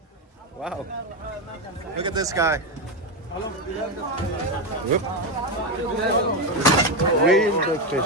Wow. Look at this guy. Whoop. Real big fish.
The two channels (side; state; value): both; normal; correlation 0.10